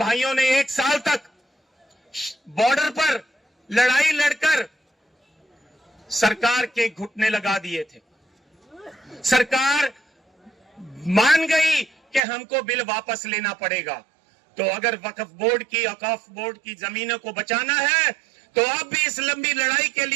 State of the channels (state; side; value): drops out; left; at 12.2 s